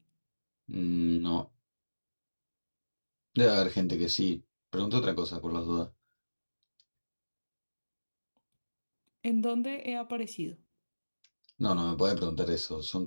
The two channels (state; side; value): inverted; both; correlation -1.00